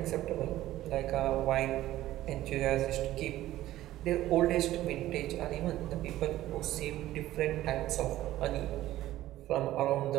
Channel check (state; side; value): quieter; left; 14.7 dB